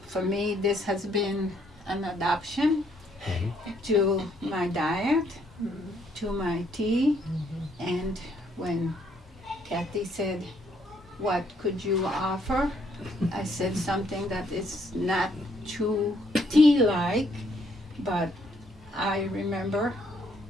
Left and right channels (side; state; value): both; normal; correlation 0.69